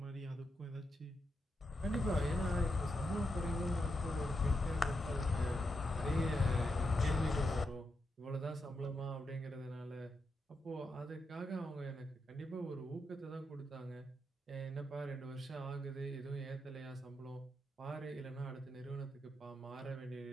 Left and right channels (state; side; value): normal; both; correlation 0.84